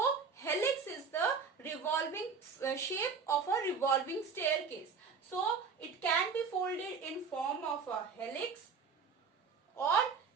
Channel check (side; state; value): left; quieter; 5.4 dB